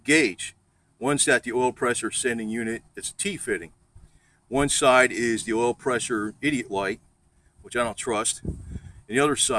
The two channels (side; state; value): both; identical; correlation 1.00